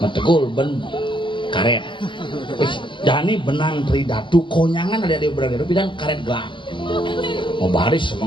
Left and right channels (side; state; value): right; late; 0.24 ms